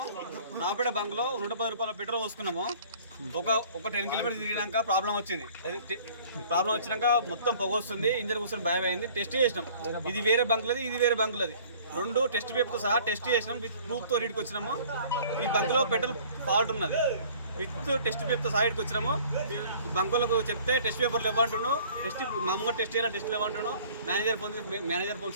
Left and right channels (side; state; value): both; inverted; correlation -0.52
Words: నాపేట బంక్లో 110 రూపాయల పెట్రోల్ పోసుకున్నాము. ఒక 10 కిలోమీటర్స్ తిరిగినాక ప్రాబ్లం వచ్చింది. ప్రాబ్లం వచ్చినాక మొత్తం పొగ వస్తుంది, ఇంజన్ కూర్చొని భయం అయింది. టెస్ట్ చేసినాం, ఇది వేరే బంకులది, ఇది వేరే బంకులది. 2 టెస్ట్ పేపర్తో సహా టెస్ట్ చేసినాం. విత్ ప్రూఫ్తో రీడ్కి వచ్చినాము. ఈ బంకులో పెట్రోల్ ఫాల్ట్ ఉన్నది. విత్ టెస్ట్ పేపర్తో సహా ఇటుకు వచ్చినాము. బంకులకు చెప్తే టెస్ట్ పేపర్లు ఇవ్వంటున్నాను, మామూలుగా టెస్ట్ చేయాలి, టెస్ట్లు ఇవ్వంటున్నాను. మేనేజర్ ఫోన్